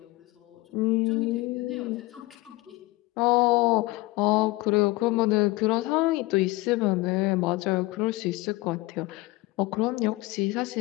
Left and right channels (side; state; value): right; quieter; 21.0 dB